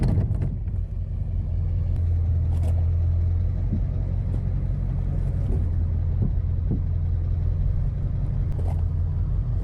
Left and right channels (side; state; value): both; identical; correlation 1.00